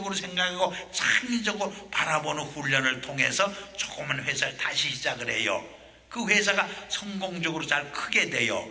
생각하고 창의적으로 바라보는 훈련을 통해서 조그만 회사를 다시 시작을 해요. 그 회사가 성공적으로 잘 크게 돼요.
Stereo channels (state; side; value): identical; both; correlation 1.00